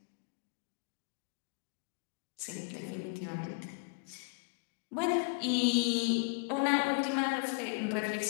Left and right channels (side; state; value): right; quieter; 36.7 dB